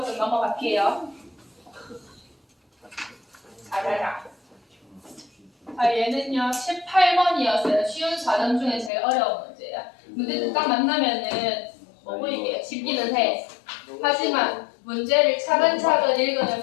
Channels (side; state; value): right; drops out; at 8.9 s